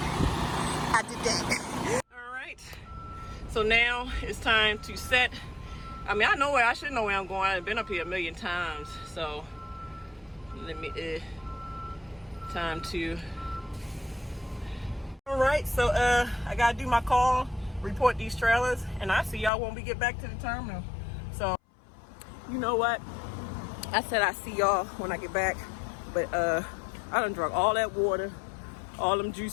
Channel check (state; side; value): drops out; right; at 19.5 s